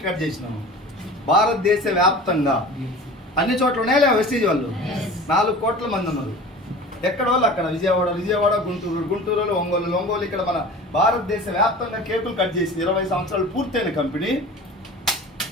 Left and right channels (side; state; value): both; normal; correlation 0.39